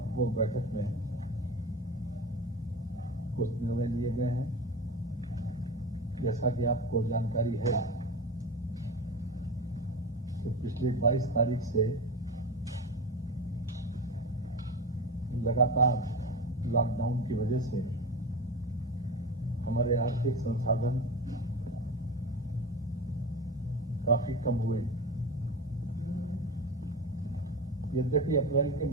बैठक में कुछ निर्णय लिए गए हैं। जैसा कि आपको जानकारी है कि पिछली 22 तारीख से लगातार लॉकडाउन की वजह से हमारे आर्थिक संसाधन काफी कम हुए। यद्यपि अप्रैल के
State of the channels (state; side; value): normal; both; correlation 0.26